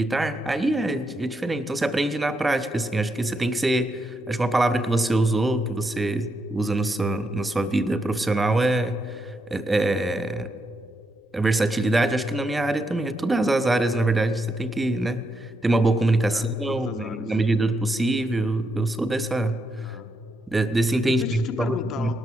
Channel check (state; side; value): normal; both; correlation 0.81